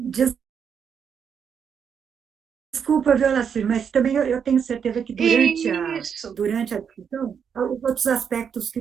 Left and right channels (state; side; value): quieter; left; 7.2 dB